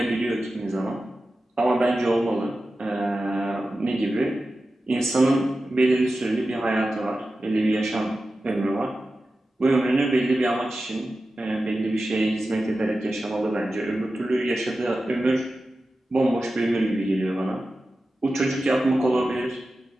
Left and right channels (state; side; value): normal; both; correlation 0.93